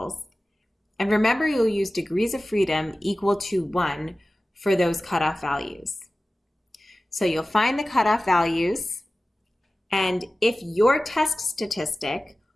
And remember, you'll use degrees of freedom equal to 1 for those cutoff values. So you'll find the cutoff values, and if your test statistic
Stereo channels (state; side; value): normal; both; correlation 0.96